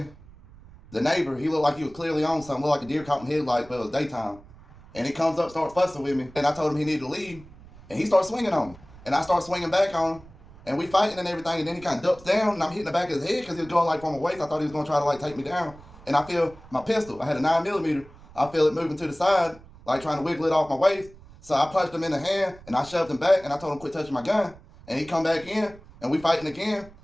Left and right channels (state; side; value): noise; right; rumble, 21 dB below the sound